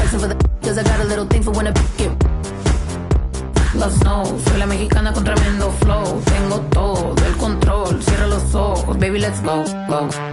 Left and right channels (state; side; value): identical; both; correlation 1.00